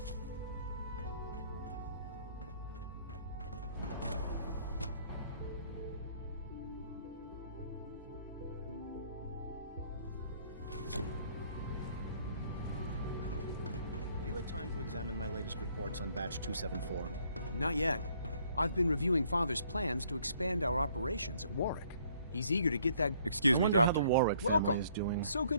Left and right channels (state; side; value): inverted; both; correlation -0.63